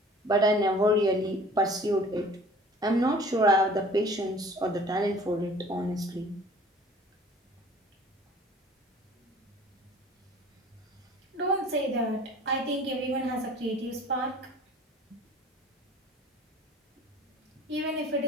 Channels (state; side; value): normal; both; correlation 0.48